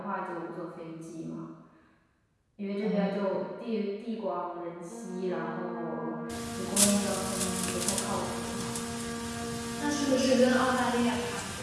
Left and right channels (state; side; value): identical; both; correlation 1.00